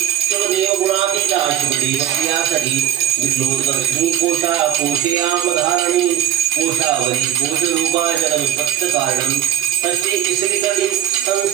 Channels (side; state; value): left; quieter; 10.9 dB